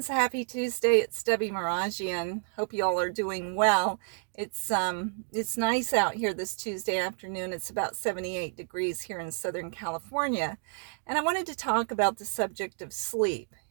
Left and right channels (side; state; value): left; silent; 58 dB below the other